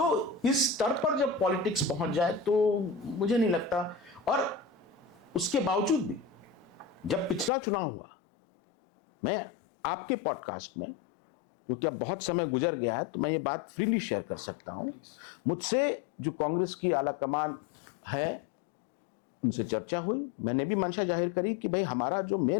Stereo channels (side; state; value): right; drops out; at 7.5 s